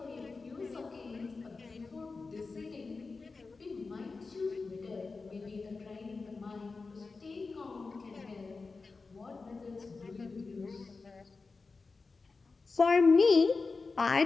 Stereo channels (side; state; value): right; quieter; 4.1 dB